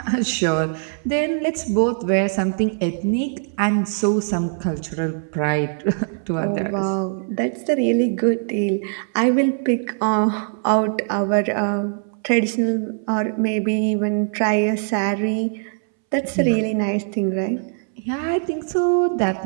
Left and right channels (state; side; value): silent; left; 65 dB below the other